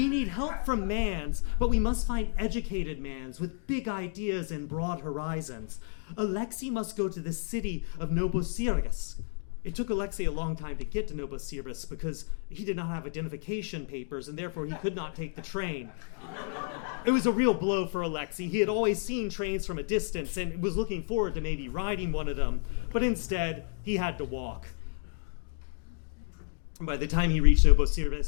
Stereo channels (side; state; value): right; silent; 57 dB below the other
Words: need help from mans, but we must find educated mans with big ideas and broad horizons. Alexei must go to the city of Novosibirsk." It took Alexei a long time to get to Novosibirsk because he did not have identification papers and therefore he could not take the train. It was a real blow for Alexei. He had always seen trains from a distance and was looking forward to maybe riding one of them, but instead he had to walk. By the time he reached